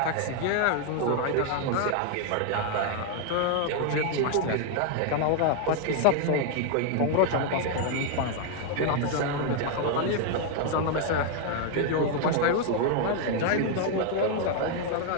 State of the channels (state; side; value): different; both; correlation 0.00